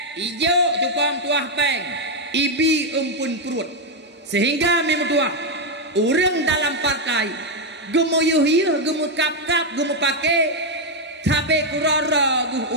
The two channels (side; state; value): both; normal; correlation 0.03